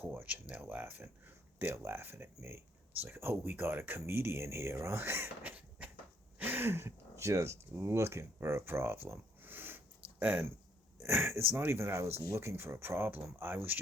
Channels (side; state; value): both; normal; correlation 0.68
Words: and they're laughing, they're laughing at me. It's like, oh, we got a comedian here, huh? Just looking for a problem. And it's not even that I was looking for a problem, I was